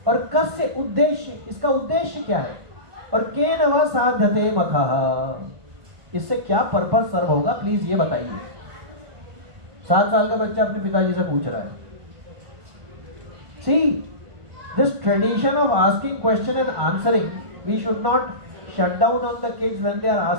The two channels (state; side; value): late; left; 1.5 ms